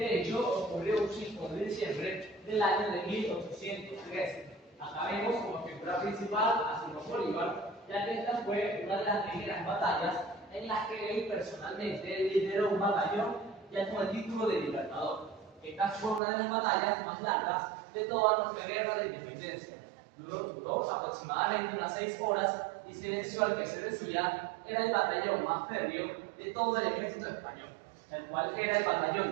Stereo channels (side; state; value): left; drops out; at 16.2 s